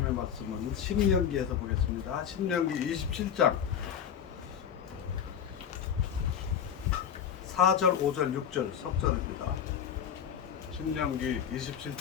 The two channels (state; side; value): quieter; right; 8.4 dB